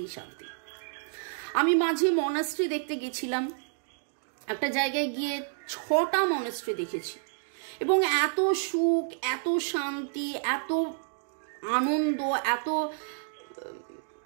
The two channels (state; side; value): silent; left; digital silence